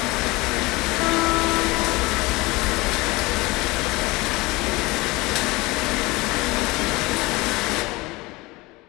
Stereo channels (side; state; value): right; quieter; 22.6 dB